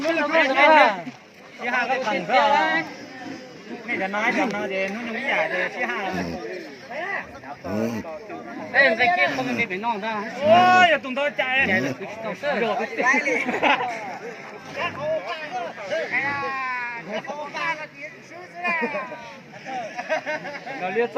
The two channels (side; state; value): both; identical; correlation 1.00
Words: là Chị Hà có thằng ra. Này là nói chồng nó thì nó nhúng giả thì chị Hà. Đây cái kia không bị non ra. Ôi, giờ tụi tôi chạy. Rồi. Nó liên